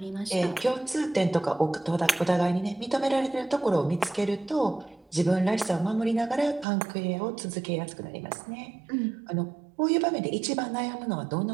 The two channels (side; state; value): left; drops out; at 6.7 s